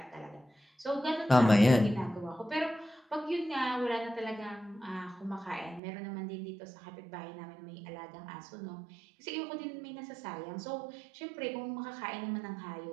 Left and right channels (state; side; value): drops out; left; at 5.8 s